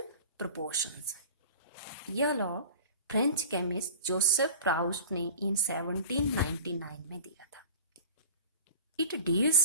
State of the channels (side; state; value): both; inverted; correlation -0.38